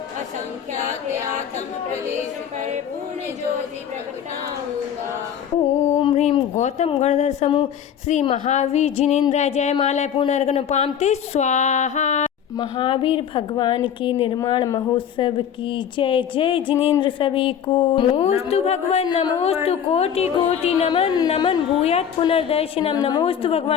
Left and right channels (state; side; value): quieter; right; 8.7 dB